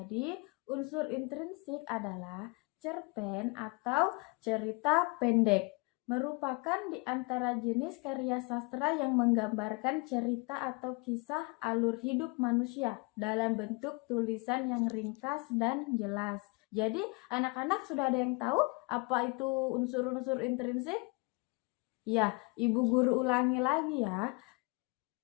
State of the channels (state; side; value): quieter; right; 29.4 dB